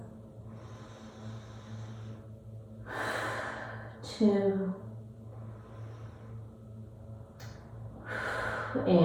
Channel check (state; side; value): identical; both; correlation 1.00